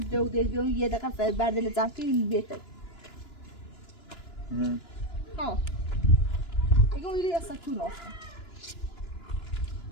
دیگه یه دقیقه بعد له زمین بیته ها ایگم ایلی اصلا تو راسته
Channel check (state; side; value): late; right; 2.9 ms